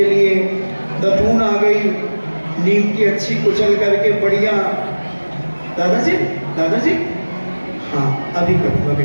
लिए, दतून आ गई, नीम की अच्छी कुचल करके बढ़िया। दादाजी, दादाजी, हाँ अभी करूँगा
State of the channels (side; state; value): both; inverted; correlation -1.00